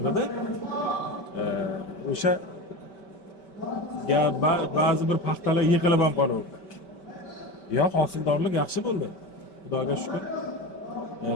O'sha ba'zi bir paxtalar yiqilib ham qolaverdi. Hosildorlik yaxshi bo'ldi. Xudoga shukr.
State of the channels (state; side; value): late; right; 5.2 ms